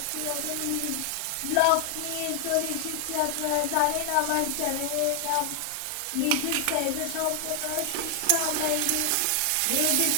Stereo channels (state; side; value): different; both; correlation 0.00